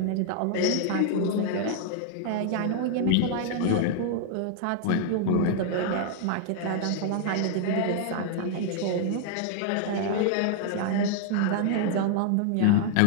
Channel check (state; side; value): different; both; correlation 0.00